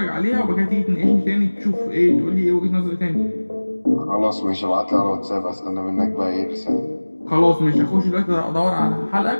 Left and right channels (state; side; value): inverted; both; correlation -1.00